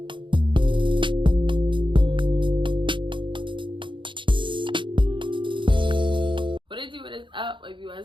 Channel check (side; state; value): left; late; 0.24 ms